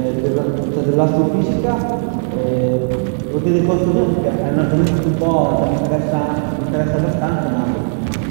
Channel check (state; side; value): silent; left; digital silence